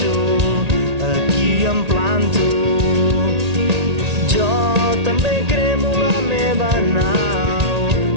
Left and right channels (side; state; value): left; late; 1.8 ms